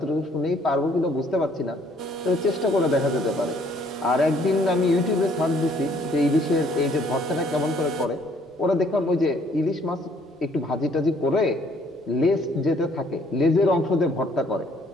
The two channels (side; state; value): both; normal; correlation 0.63